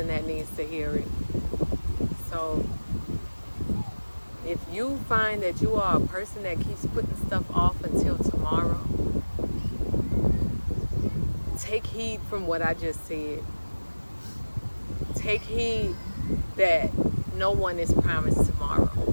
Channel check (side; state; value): both; inverted; correlation -1.00